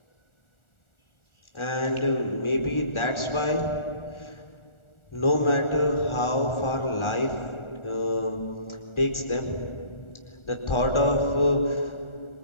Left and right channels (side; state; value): right; late; 1.4 ms